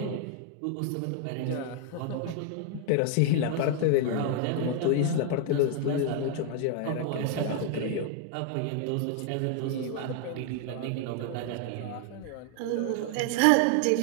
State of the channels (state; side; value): different; both; correlation 0.00